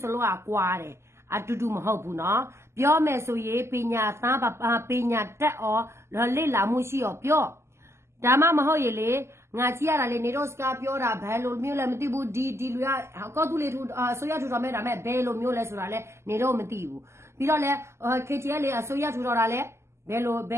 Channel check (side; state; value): left; late; 0.13 ms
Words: စလုံးကွာတယ်အတူတူမဟုတ်ဘူးနော်ပြောမယ်ဆိုရင်ပညာသားပညာတက်အော်လေ့လာမှုရှိရောပြောဒါမှမဟုတ်ရေလေငါကြည့်ရတာလေနေတော့စကားပြောတာဘယ်လိုမျိုးလဲမသိဘူးဒီလူကကော့တူးလေထူဆိုရထူတော်မဲ့ဒါမဲ့ဘယ်လိုမျိုးလဲဆိုတာလဲနေတော့မသိဘူးပြီးတော့လဲ KTL လေအစိုးရထူတော်တာလဲဘယ်